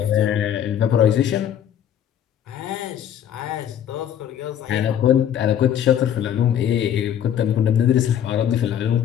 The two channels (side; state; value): right; quieter; 9.7 dB